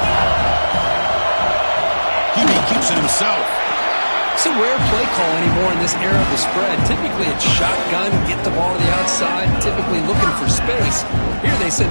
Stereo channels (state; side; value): inverted; both; correlation -1.00